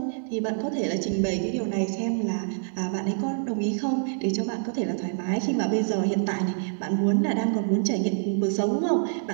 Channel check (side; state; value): left; silent; digital silence